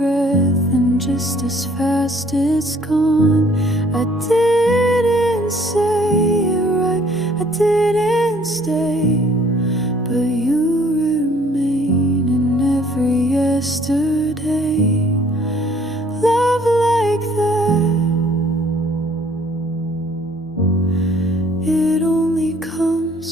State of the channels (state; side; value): normal; both; correlation 0.59